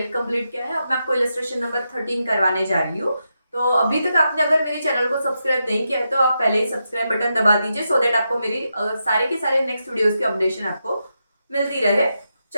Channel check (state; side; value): inverted; both; correlation -0.86